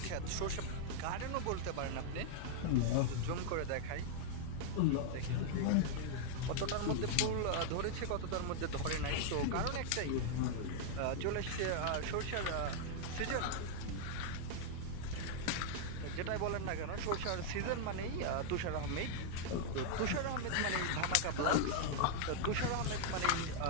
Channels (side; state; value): both; different; correlation -0.01